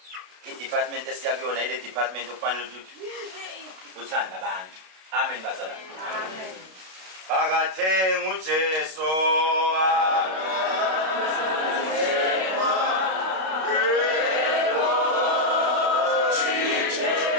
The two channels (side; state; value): left; late; 32 ms